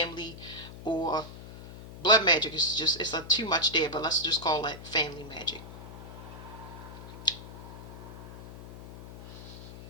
or blood magic is just, it's a too much there, but let's just call that family magic.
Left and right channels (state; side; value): noise; left; hum, 13 dB below the sound